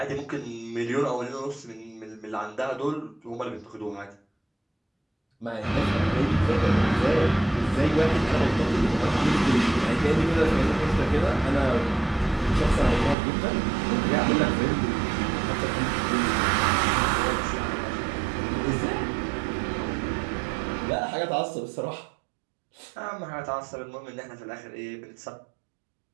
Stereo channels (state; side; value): drops out; left; at 13.2 s